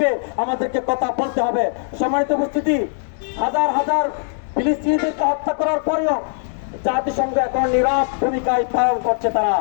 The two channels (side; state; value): right; silent; 66 dB below the other